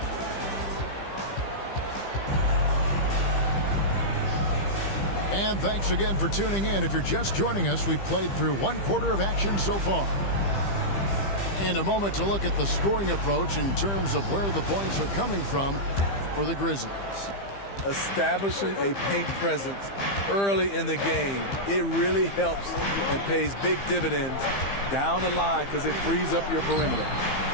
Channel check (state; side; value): late; right; 15 ms